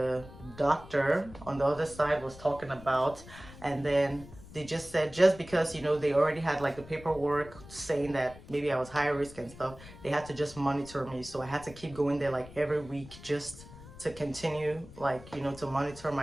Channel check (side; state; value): left; noise; rumble, 17 dB below the sound